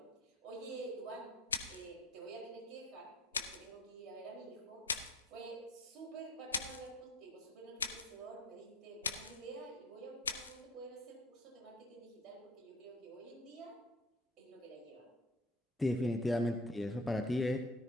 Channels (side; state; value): both; normal; correlation 0.41